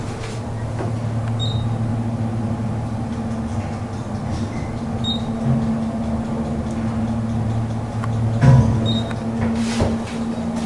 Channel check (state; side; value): identical; both; correlation 1.00